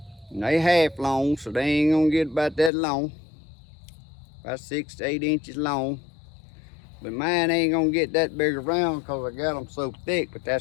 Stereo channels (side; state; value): right; drops out; at 2.7 s